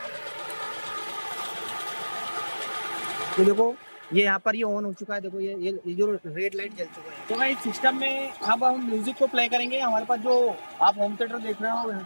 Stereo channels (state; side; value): inverted; both; correlation -1.00